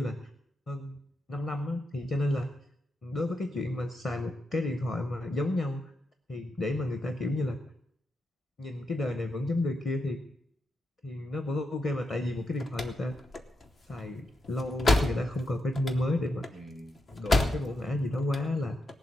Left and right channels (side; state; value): both; normal; correlation 0.85